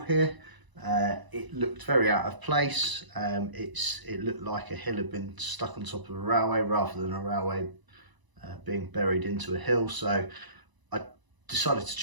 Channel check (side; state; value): left; late; 1.0 ms